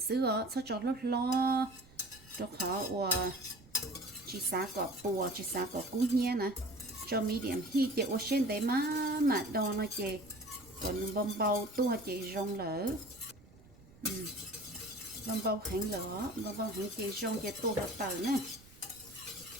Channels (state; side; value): noise; right; rumble, 24 dB below the sound